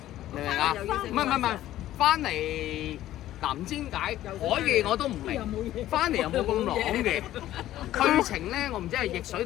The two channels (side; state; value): right; quieter; 13.7 dB